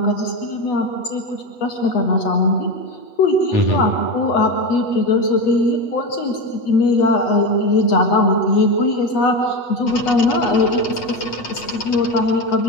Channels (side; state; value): right; late; 8.2 ms